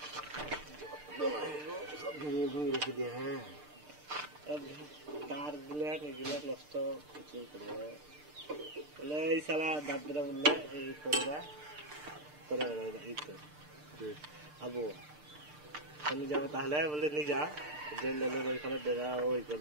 রেখে দিয়ে। হ্যাঁ তার গুলা নষ্ট কিছু করে বলে এই শালা দাদরা বললে এই করে এই তো আবু আমি যাবো তাহলে বলে নি যা যে লেলের ওইখানে দেখা ওই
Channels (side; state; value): left; late; 6.7 ms